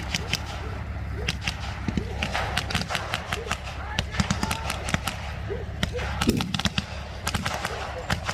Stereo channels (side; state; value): both; identical; correlation 1.00